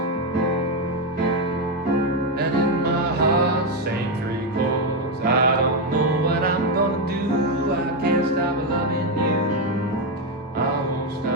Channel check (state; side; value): normal; both; correlation 0.07